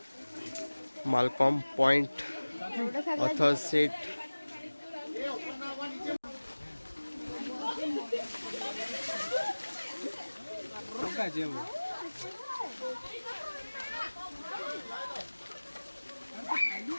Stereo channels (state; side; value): inverted; both; correlation -1.00